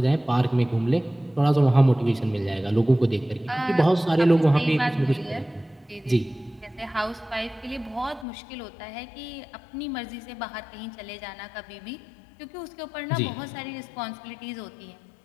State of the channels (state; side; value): drops out; right; at 8.2 s